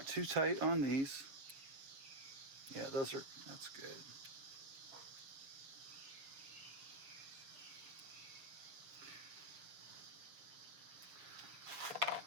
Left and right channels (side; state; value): left; late; 6.8 ms